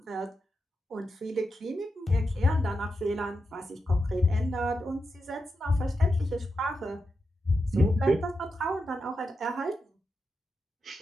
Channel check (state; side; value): normal; both; correlation 0.87